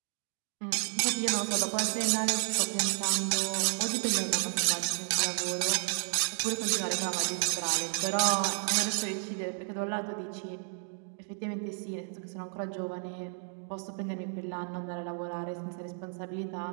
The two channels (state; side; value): silent; left; 57 dB below the other